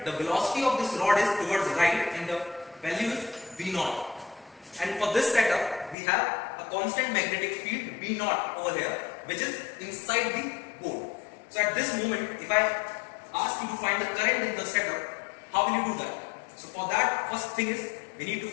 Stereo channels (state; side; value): drops out; right; at 6.0 s